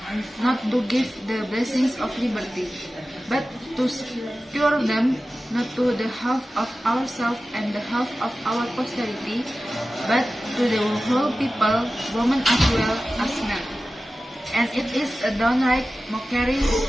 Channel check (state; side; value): normal; both; correlation 0.95